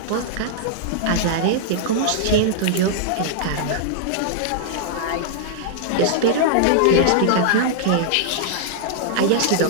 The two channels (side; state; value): both; different; correlation -0.01